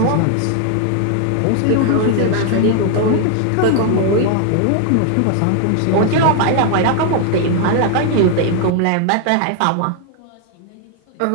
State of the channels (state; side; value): different; both; correlation 0.00